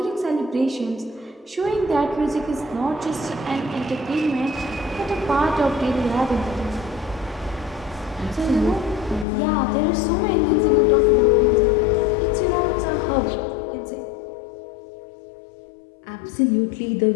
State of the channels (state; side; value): drops out; right; at 9.2 s